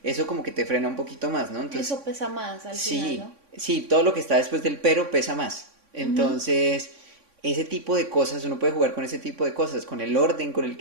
Eso como que te frena un poquito más, ¿no? Entonces, Eso pesa más al final, sí, ¿no? Sí, todo lo que está después del pero pesa más. Ujú. Entonces, ese tipo de cosas, uno puede jugar con ese tipo de cosas, con el orden con el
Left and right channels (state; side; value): late; left; 3.6 ms